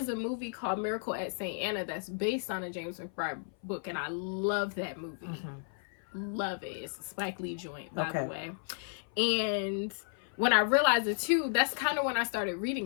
a movie called Miracle at St. Anna that's based on a James McBride book, and I love that movie. Mm-hmm. Love it. It's a Spike Lee joint, by Okay. the way. And when I realized it too, that's kind of when I started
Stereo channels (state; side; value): silent; right; 56 dB below the other